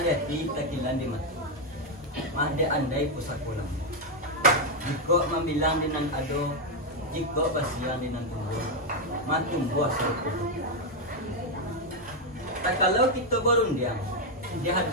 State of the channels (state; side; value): normal; both; correlation 0.03